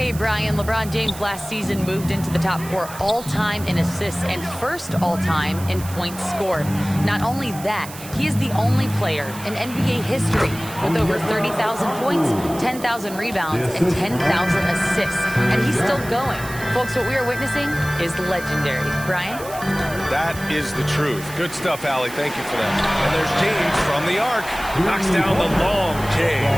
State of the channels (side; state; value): right; noise; hiss, 14 dB below the sound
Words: Brian. LeBron James last season moved into the top 4 all-time in assists and first all-time in points scored. Not only that, he is the only player in NBA history with over 30,000 points, 10,000 rebounds, and 10,000 assists. And he's still going. Folks, what we are witnessing is legendary. Brian? That is the truth. Good stuff, Allie. Thank you for that. And there's James from the arc. Knocks down the long J.